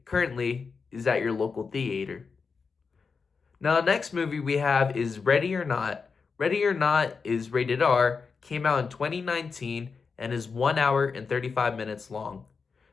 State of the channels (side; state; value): right; quieter; 5.1 dB